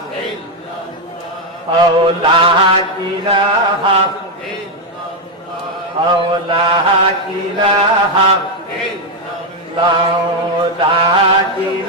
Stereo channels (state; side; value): normal; both; correlation 0.04